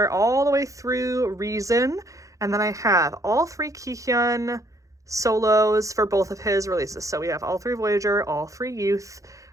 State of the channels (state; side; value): late; left; 0.16 ms